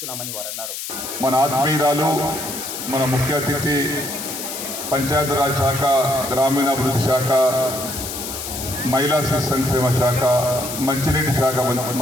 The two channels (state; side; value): noise; left; hiss, 7 dB below the sound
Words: వారన్నారు. మన ఆత్మీయురాలు, మన ముఖ్య అతిథి, పంచాయతీరాజ్ శాఖ, గ్రామీణాభివృద్ధి శాఖ, మహిళా శిశు సంక్షేమ శాఖ, మంచినీటి శాఖ